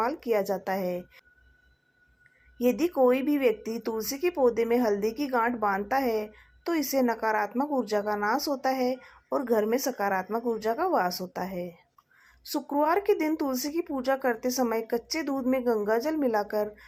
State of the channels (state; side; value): identical; both; correlation 1.00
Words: किया जाता है। यदि कोई भी व्यक्ति तुलसी के पौधे में हल्दी की गांठ बांधता है तो इससे नकारात्मक ऊर्जा का नाश होता है और घर में सकारात्मक ऊर्जा का वास होता है। शुक्रवार के दिन तुलसी की पूजा करते समय कच्चे दूध में गंगा जल मिलाकर